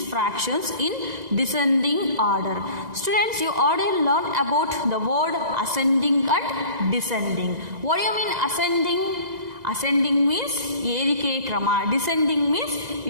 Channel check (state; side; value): late; left; 1.9 ms